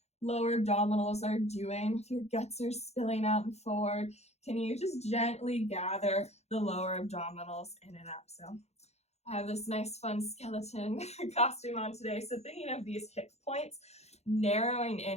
lower abdominals are doing. If your guts are spilling out and forward, can you just gently gather the lower abdominals in and up? So I have this nice fun skeleton costume on today. So thinking of these hip points narrowing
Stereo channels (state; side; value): late; right; 0.31 ms